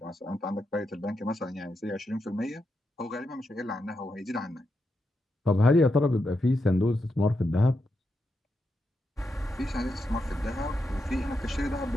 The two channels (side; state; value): both; normal; correlation 0.85